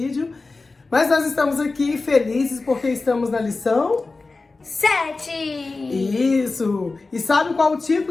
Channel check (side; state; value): right; quieter; 3.7 dB